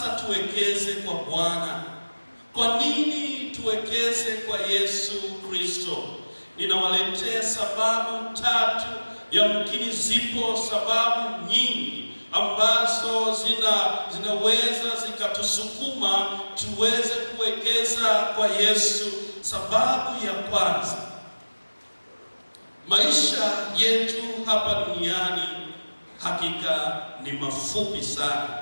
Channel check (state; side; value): inverted; both; correlation -1.00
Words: tuwekeze kwa Bwana? Kwa nini tuwekeze kwa Yesu Kristo? Ninawaletea sababu tatu. Yamkini zipo sababu nyingi ambazo zinaweza zikatusukuma tuweze kuwekeza kwa Yesu. Sababu ya kwanza, maisha yetu hapa duniani hakika ni mafupi sana.